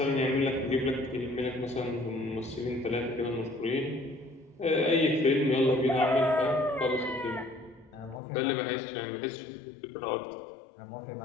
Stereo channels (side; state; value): right; drops out; at 8.2 s